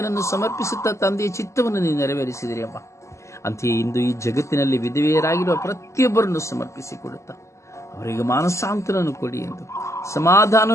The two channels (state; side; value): late; right; 0.14 ms